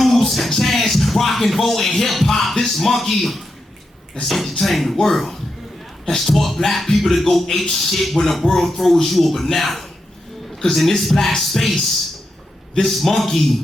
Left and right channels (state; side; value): normal; both; correlation 0.86